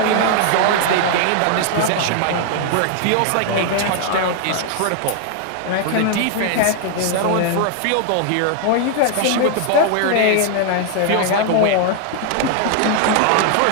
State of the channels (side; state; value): both; different; correlation 0.00